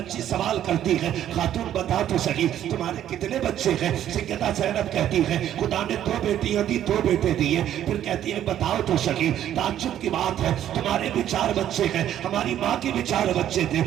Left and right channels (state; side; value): quieter; left; 11.2 dB